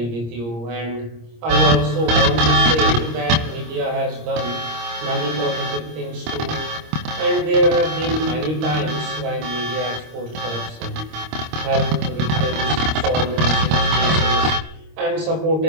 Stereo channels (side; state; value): left; late; 26 ms